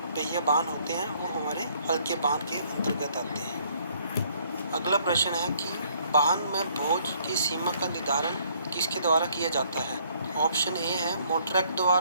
पहिया वाहन होते हैं वो हमारे हल्के वाहन के अंतर्गत आते हैं। अगला प्रश्न है कि वाहन में बोझ की सीमा का निर्धारण किसके द्वारा किया जाता है? ऑप्शन ए है मोटर एक्ट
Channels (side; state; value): both; inverted; correlation -0.64